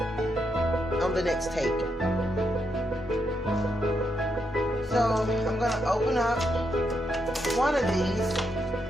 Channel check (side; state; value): both; normal; correlation 0.81